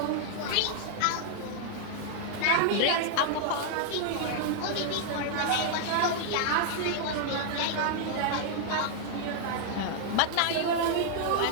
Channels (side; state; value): both; different; correlation 0.00